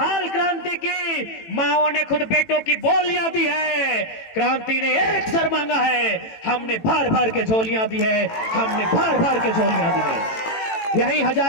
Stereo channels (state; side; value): late; right; 18 ms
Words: क्रांति की, माओं ने खुद बेटों की बोलियां दी है। क्रांति ने एक सर मांगा है, हमने भर भर के झोलियां दी है, हमने भर भर के झोलियां दी है। यही